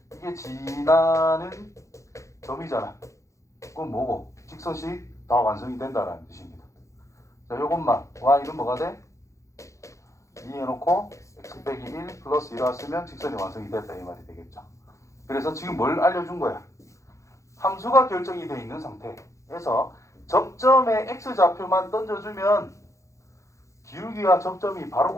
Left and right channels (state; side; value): late; right; 0.15 ms